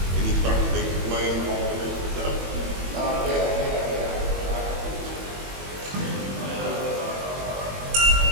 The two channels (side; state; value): left; late; 21 ms